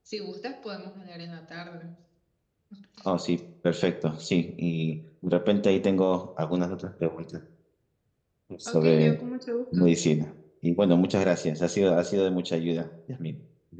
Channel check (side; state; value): both; identical; correlation 1.00